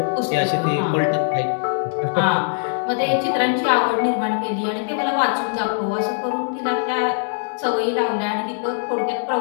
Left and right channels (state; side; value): silent; right; digital silence